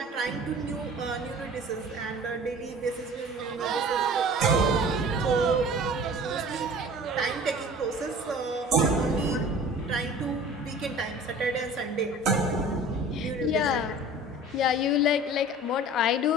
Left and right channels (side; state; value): both; normal; correlation 0.43